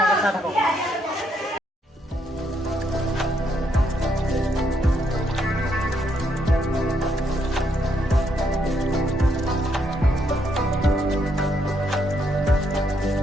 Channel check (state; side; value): normal; both; correlation 0.75